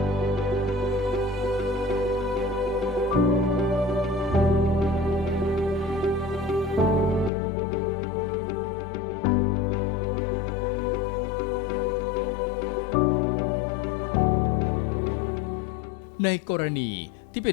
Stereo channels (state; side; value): drops out; right; at 7.3 s